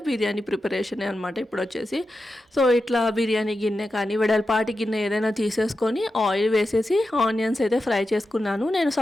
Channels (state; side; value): normal; both; correlation 0.91